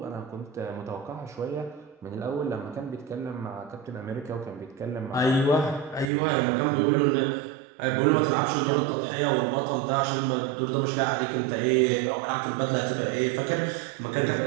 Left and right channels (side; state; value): left; drops out; at 6.1 s